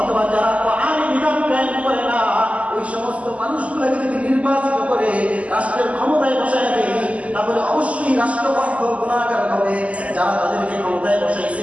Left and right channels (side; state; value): left; late; 0.067 ms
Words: যারা কোরআনের বিধান কায়েম করে না, ওই সমস্ত মানুষগুলোকে যদি নির্বাচিত করে রাষ্ট্রের ক্ষমতায় বসায় দেয়, তাহলে অবশ্যই রাষ্ট্রপক্ষ গুনাহগার হবে। যারা তাদেরকে ক্ষমতায়